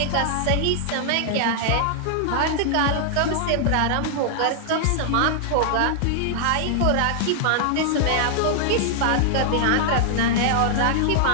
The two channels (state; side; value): different; both; correlation -0.01